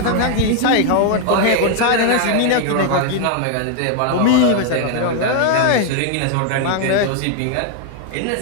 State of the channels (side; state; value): both; different; correlation 0.00